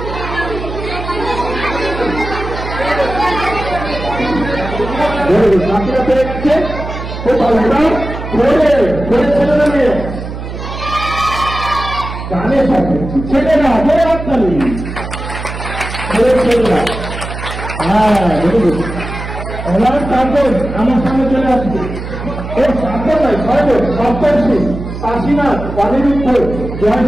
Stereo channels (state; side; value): noise; right; hum, 8 dB below the sound